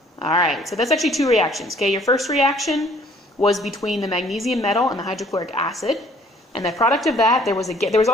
All right, so that's actually two reactions. Okay, your first reaction was between the magnesium metal and the hydrochloric acid, and the product of that, there was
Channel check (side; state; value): both; normal; correlation 0.58